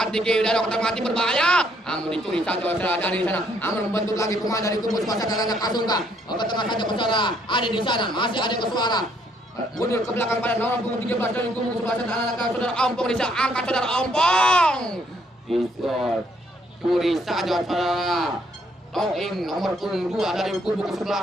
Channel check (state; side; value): normal; both; correlation 0.69